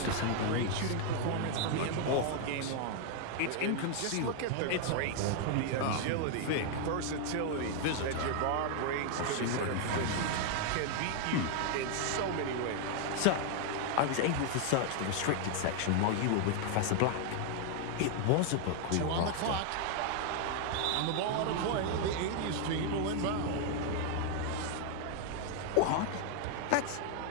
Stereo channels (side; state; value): both; different; correlation 0.00